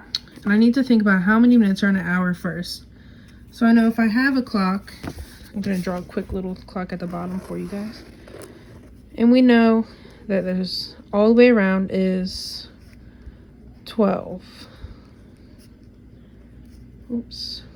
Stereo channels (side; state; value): both; identical; correlation 1.00